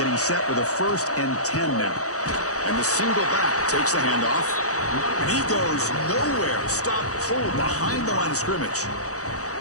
set with a 1st and 10 now. And the single back takes the handoff. And he goes nowhere. Stop pulled behind the line of scrimmage.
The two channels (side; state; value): right; late; 0.66 ms